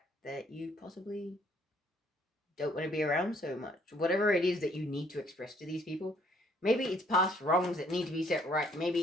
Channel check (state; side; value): normal; both; correlation 0.64